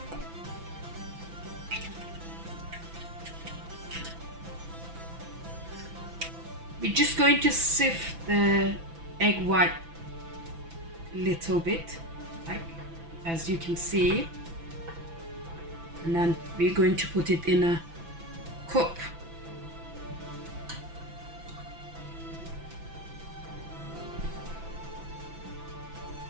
We're just going to sift the egg white a little bit, like as you can see, and then we're going to put it in a cup.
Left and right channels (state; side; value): late; left; 6.0 ms